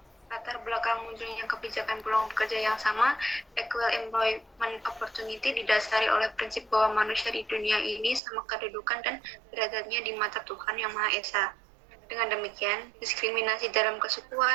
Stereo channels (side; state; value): left; drops out; at 8.2 s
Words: Latar belakang munculnya kebijakan peluang bekerja yang sama, equal employment opportunity, didasari oleh prinsip bahwa manusia di dunia ini sama kedudukan dan derajatnya di mata Tuhan Yang Maha Esa. Dengan demikian, diskriminasi dalam